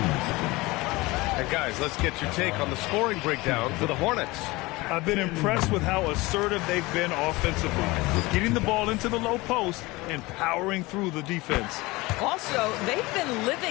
And guys, let's get your take on the scoring breakdown for the Hornets. I've been impressed with how assertive they've been offensively, getting the ball into the low post and powering through the defense. Also, they've been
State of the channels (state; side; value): quieter; right; 21.9 dB